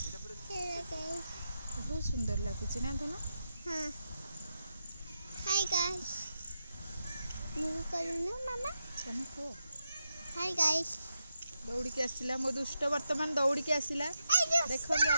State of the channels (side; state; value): both; inverted; correlation -0.86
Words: बहुत सुंदर लगुच ना धन। हाँ हाय गाइस मु करूनु मामा चल को हाय गाइस दौड़ी के आसिला मो दुष्ट वर्तमान दौड़ी के आसिला देखंतु